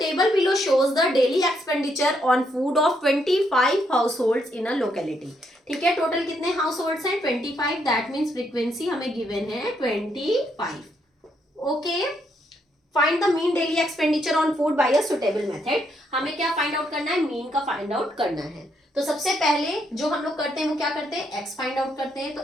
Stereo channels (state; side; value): normal; both; correlation 0.75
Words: below shows the daily expenditure on food of 25 households in a locality. ठीक है, total कितने house holds हैं? 25। That means frequency हमें given है 25। Okay, find the mean daily expenditure on food by a suitable method. हमें क्या find out करना है? मीन का फाइंड आउट करना है। तो सबसे पहले जो हम लोग करते हैं वो क्या करते हैं? एक्स फाइंड आउट करते हैं। तो